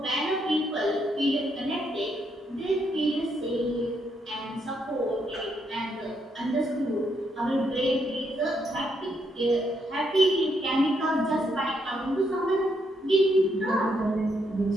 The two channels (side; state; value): both; normal; correlation 0.76